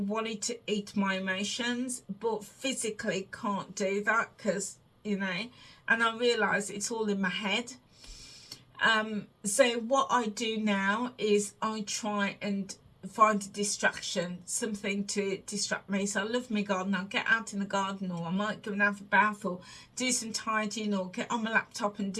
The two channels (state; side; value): identical; both; correlation 1.00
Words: to eat my emotions, but physically can't do that because, and I realise it's all in my head. So what I do now is I try and find a distraction, something to distract me. So I love my garden. I'll get out in the garden, or I might go and have a bath, or do some tidying, or get on my laptop and